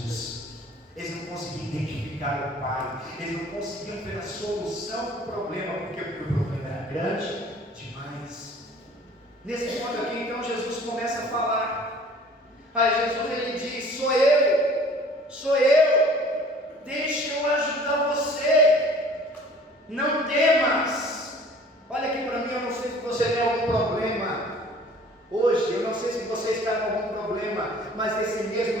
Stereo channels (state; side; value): normal; both; correlation 0.50